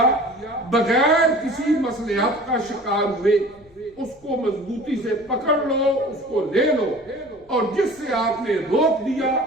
بغیر کسی مصلحت کا شکار ہوئے اس کو مضبوطی سے پکڑ لو، اس کو لے لو، اور جس سے آپ نے روک دیا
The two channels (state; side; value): noise; left; rumble, 29 dB below the sound